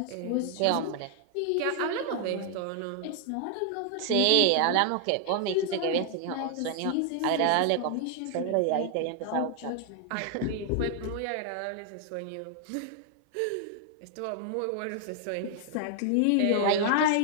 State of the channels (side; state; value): both; different; correlation 0.00